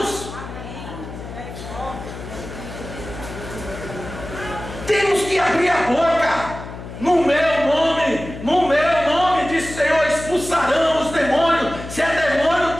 Temos que abrir a boca. No meu nome, diz o Senhor, expulsarão os demônios. Se é demônio,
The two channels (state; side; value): noise; left; hum, 11 dB below the sound